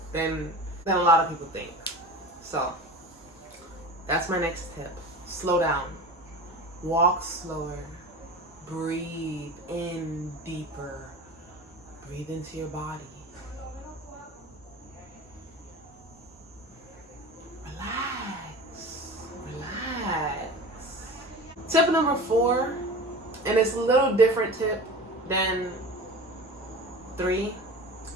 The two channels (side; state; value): both; normal; correlation 0.34